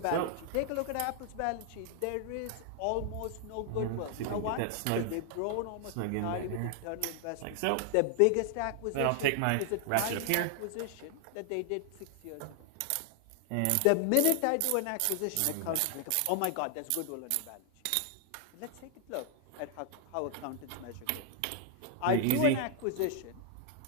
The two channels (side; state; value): both; different; correlation 0.00